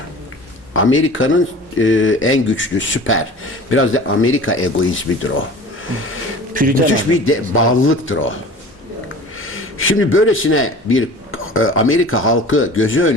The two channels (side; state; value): both; normal; correlation 0.40